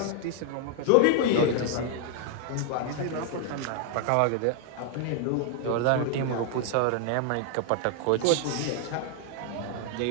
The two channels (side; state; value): both; different; correlation 0.00